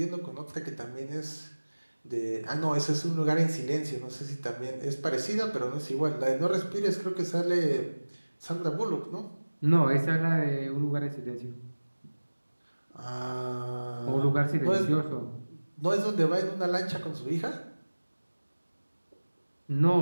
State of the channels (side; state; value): both; inverted; correlation -1.00